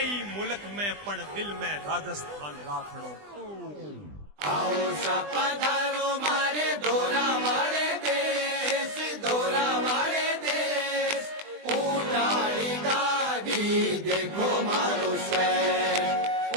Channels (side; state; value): left; late; 20 ms